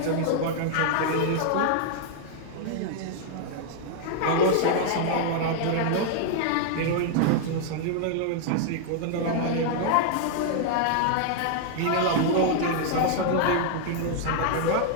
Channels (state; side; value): different; both; correlation -0.01